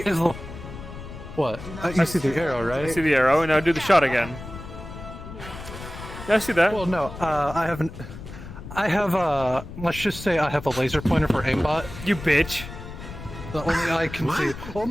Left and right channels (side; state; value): left; noise; rumble, 12 dB below the sound